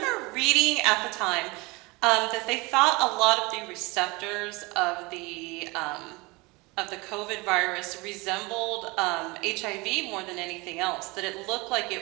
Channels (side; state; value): left; quieter; 25.0 dB